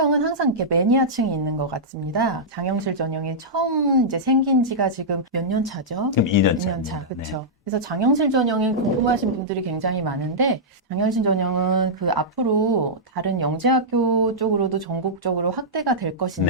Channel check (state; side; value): normal; both; correlation -0.12